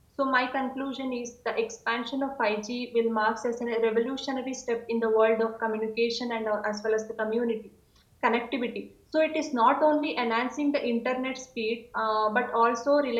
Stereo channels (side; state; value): both; identical; correlation 1.00